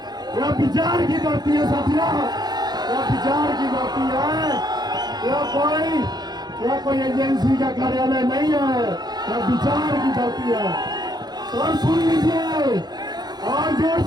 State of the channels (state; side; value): late; left; 0.20 ms